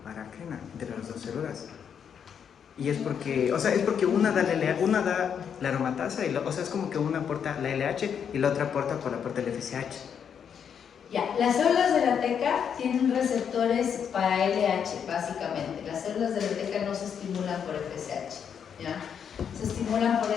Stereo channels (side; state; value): right; quieter; 7.7 dB